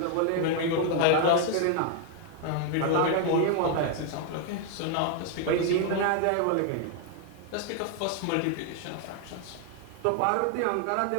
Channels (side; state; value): both; different; correlation 0.00